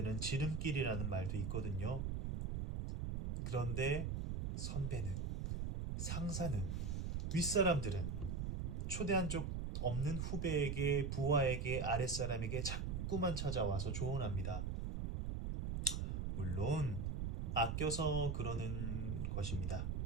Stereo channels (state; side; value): noise; right; rumble, 2 dB below the sound